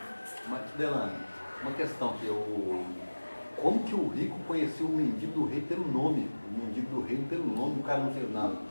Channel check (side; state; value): both; inverted; correlation -1.00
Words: Mas, Delane, uma questão que eu... Como que o rico conheceu o mendigo do rei pelo nome? O mendigo do rei pelo nome, o cara não fez nada.